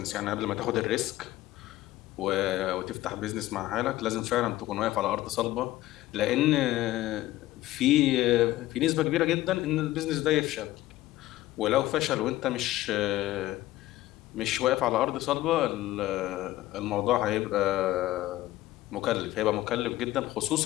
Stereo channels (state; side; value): quieter; right; 16.1 dB